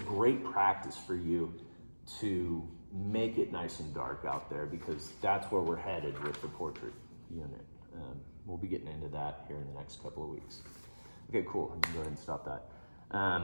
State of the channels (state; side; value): inverted; both; correlation -1.00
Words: practice for you to make it nice and dark out there, because that's where we're headed with the portrait unit. We'll be getting into that here in the next couple of weeks. Okay, cool, I can go ahead and stop that.